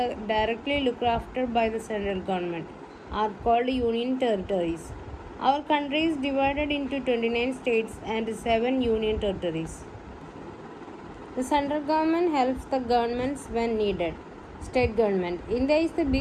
looked after by the central government, are called union territories. Our country is divided into 29 states and 7 union territories. The central government helps the governments when needed. State government. India is a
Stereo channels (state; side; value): identical; both; correlation 1.00